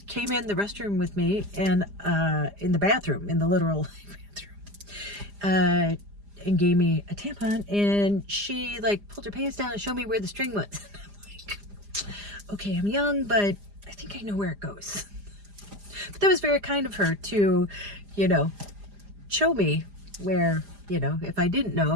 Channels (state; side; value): late; left; 4.9 ms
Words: came in the restroom with me and in the bathroom, in the literal bathroom, and gave me a tampon, and she like pulled her pants down and showed me where the string was. I'm like, okay, I'm young, but I think I know where it goes. But that was very kind of her to, you know, show me where, you know, if I didn't know,